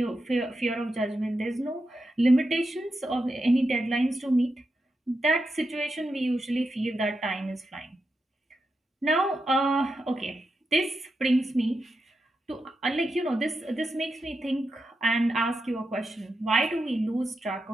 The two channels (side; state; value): both; normal; correlation 0.87